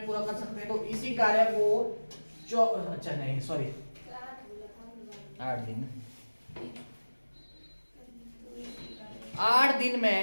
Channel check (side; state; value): both; inverted; correlation -1.00